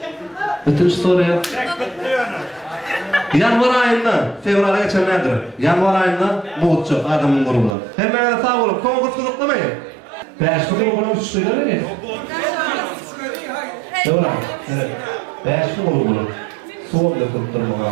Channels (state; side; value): drops out; left; at 7.8 s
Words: Bütün soruya. Yanvar ayında, fevrala geçenlerdir. Yanvar ayında Muğutçu adamın grubundan. Hemen sağ olun, konkurs kızıklamayın. Beş grubuna 3 kıydı mi? Fevral, evet. Beş grubuna. Soğuk da kırptırma.